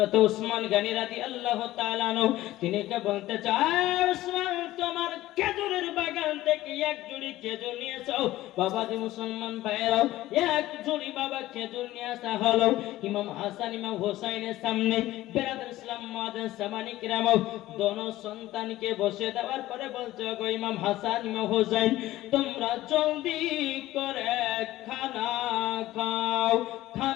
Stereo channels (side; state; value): right; quieter; 15.9 dB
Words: উসমান গনি রাদিয়াল্লাহু তাআলা আনহু তিনি কে বলতে চায়, উসমান তোমার খেজুরের বাগান থেকে এক জুড়ি খেজুর নিয়ে এসো। বাবা যে মুসলমান ভাইরাও, এক জুড়ি বাবা খেজুর নিয়ে আসা হলো ইমাম হাসান ইমাম হোসাইনের সামনে। বেরাদর ইসলাম মাদান সামানি কিরাম দোনো সন্তানকে বসে দেওয়ার পরে বলছে, গো ইমাম হাসান ইমাম হোসাইন, তোমরা জলদি করে খানা খাও।